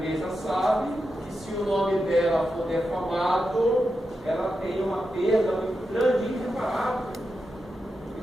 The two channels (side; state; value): both; normal; correlation 0.88